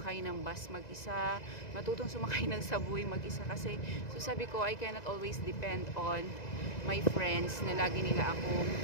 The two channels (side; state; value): right; late; 2.0 ms